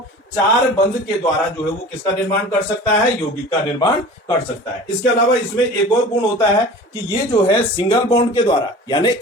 4 बंध के द्वारा जो है वो किसका निर्माण कर सकता है, यौगिक का निर्माण कर सकता है। इसके अलावा इसमें एक और गुण होता है कि ये जो है सिंगल बॉन्ड के द्वारा, यानी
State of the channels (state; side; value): normal; both; correlation 0.40